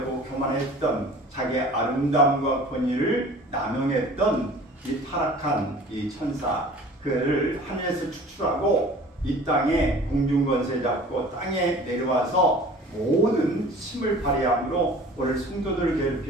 교만했던 자기의 아름다움과 권위를 남용했던 이 타락한 이 천사 그를 하늘에서 추출하고 이 땅에 공중권세 잡고 땅에 내려와서 모든 힘을 발휘함으로 오늘 성도들을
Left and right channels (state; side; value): normal; both; correlation 0.45